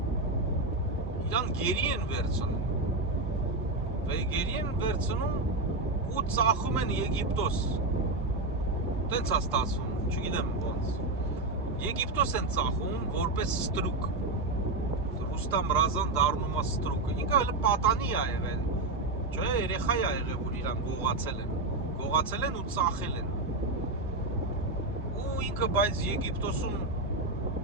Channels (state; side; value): quieter; left; 3.1 dB